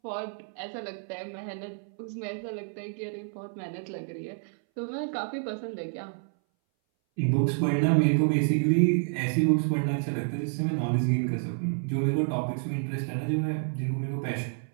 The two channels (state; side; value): silent; left; 59 dB below the other